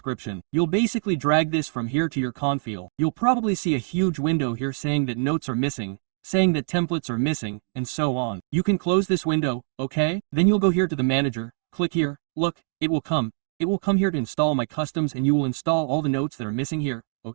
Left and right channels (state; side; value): silent; left; digital silence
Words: You'll basically drag this from here to your Comfy. You'll probably see a huge window here saying that notes are missing, saying that templates are missing, and so on. You can close this window, okay? Then you'll go here to the manager, click here, look, it will come. It will come here to install my customs and you will install all the notes that are missing here,